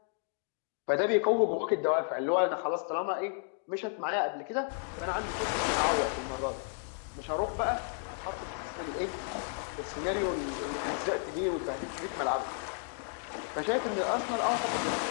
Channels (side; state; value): right; silent; 56 dB below the other